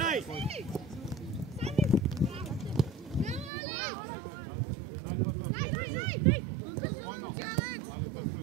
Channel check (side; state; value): left; drops out; at 3.5 s